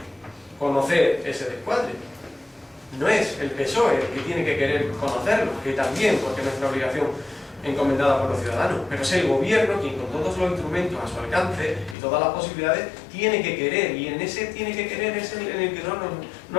conocer ese descuadre. No es el PSOE el que tiene que querer conocerlo, que también, porque es nuestra obligación encomendada por los ciudadanos, pero es el gobierno quien con todos los instrumentos a su alcance y todas las posibilidades tiene que querer, y en ese tiene que querer es en el que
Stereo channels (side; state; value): right; drops out; at 12.0 s